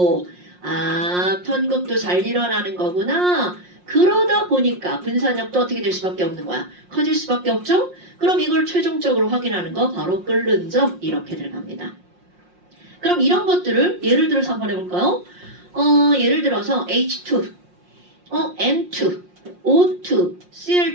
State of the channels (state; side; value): late; left; 5.6 ms